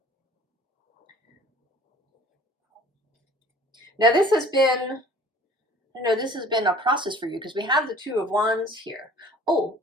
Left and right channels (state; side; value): normal; both; correlation 0.49